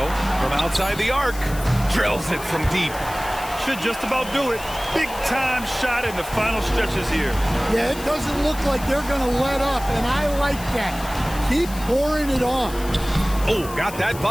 from outside the arc. Drills it from deep. Should just about do it. Big time shot in the final stretches here. Yeah, it doesn't look like they're going to let up, and I like that. Keep pouring it on. Oh, got that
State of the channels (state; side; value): noise; left; hiss, 15 dB below the sound